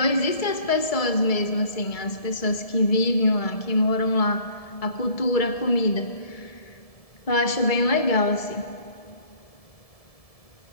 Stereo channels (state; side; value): late; right; 1.7 ms